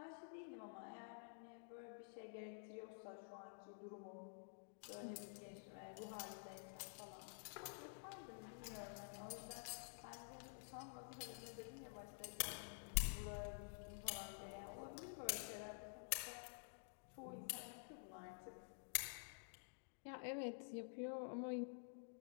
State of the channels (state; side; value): silent; right; digital silence